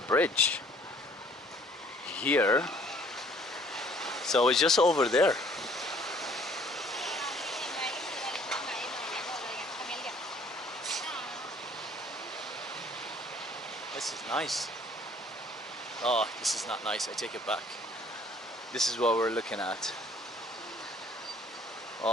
bridge here. So it's just over there. This is nice. Oh, this is not nice. I take it back. This is what we're looking at.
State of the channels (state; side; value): normal; both; correlation 0.57